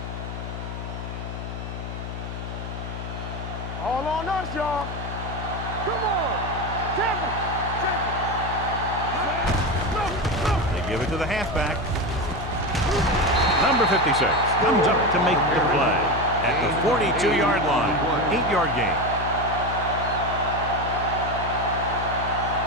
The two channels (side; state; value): left; noise; hum, 7 dB below the sound